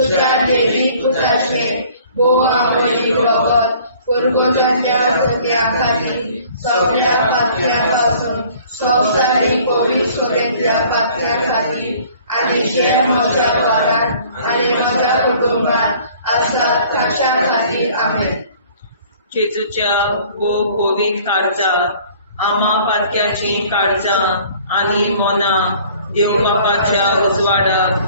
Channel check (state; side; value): inverted; both; correlation -0.53